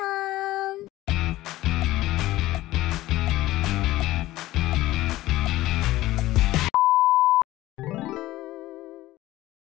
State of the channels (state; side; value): quieter; right; 16.5 dB